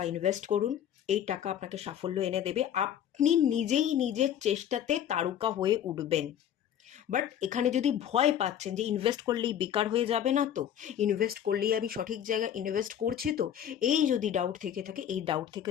ইনভেস্ট করুন, এই টাকা আপনাকে সাফল্য এনে দেবে। আপনি নিজেই নিজের চেষ্টাতে তারকা হয়ে উঠবেন। বাট এখানে যদি ভয় পাচ্ছেন যে ইনভেস্ট করলেই বেকার হয়ে যাবে না, তো ইনভেস্ট করলেই আমি সঠিক জায়গায় ইনভেস্ট করছি তো, এই যদি ডাউট থেকে থাকে, এই ডাউট থেকে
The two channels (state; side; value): quieter; right; 10.0 dB